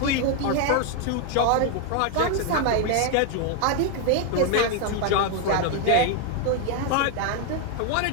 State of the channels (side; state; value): both; different; correlation 0.00